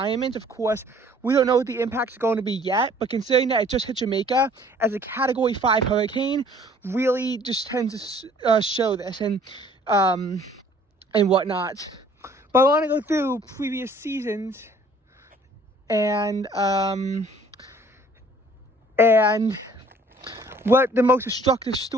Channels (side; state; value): both; normal; correlation 0.56